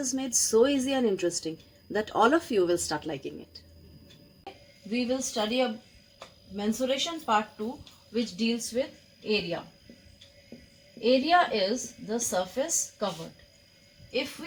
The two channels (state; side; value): identical; both; correlation 1.00